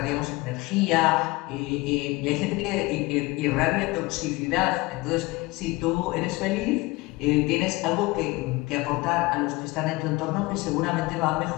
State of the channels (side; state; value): right; quieter; 22.2 dB